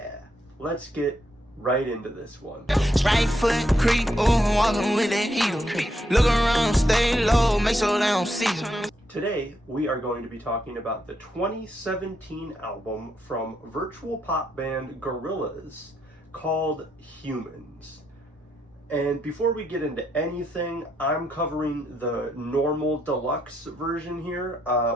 let's get right into this one. Right foot creep, ooh, walking with that heel. Look around, stay low, make sure they don't see you. Today, we are going to be talking about the 2017 album from virtual pop band Gorillaz called Humanz. And before we get into anything, I'm covering the normal deluxe version here.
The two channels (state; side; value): normal; both; correlation 0.79